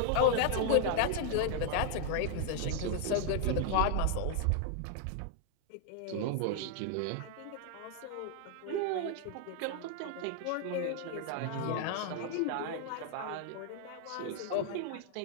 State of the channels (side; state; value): both; different; correlation 0.00